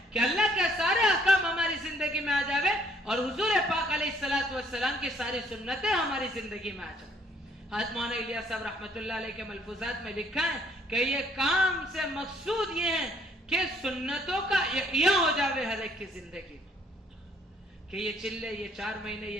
کہ اللہ کے سارے احکام ہماری زندگی میں آ جاوے اور حضور پاک علیہ السلام کی ساری سنتیں ہماری زندگی میں آ جائیں. حضرت مولانا الیاس صاحب رحمۃ اللہ علیہ کے ملفوظات میں لکھا ہے کہ یہ کام سے مقصود یہ ہے کہ سنتوں کا احیاء ہو جاوے ہر ایک کی زندگی میں. کہ یہ چلے، یہ 4 مہینے،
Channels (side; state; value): both; normal; correlation 0.64